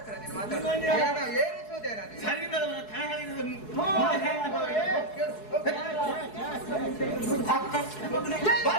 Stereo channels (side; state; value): right; late; 4.7 ms